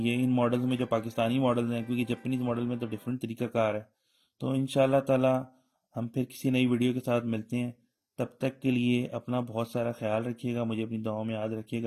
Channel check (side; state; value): both; identical; correlation 1.00